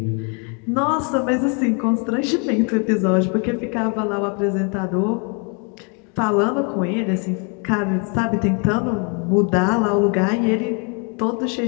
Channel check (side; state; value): right; quieter; 36.4 dB